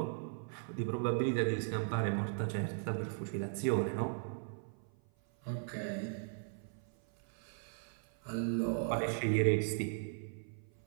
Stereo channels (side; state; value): left; silent; 53 dB below the other